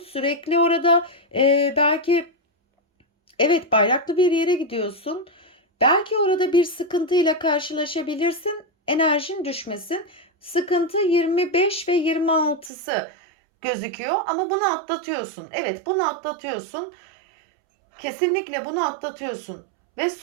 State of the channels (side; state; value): left; drops out; at 12.7 s